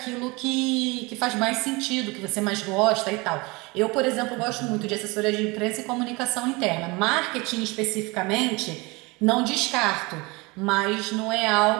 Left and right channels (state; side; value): quieter; left; 25.3 dB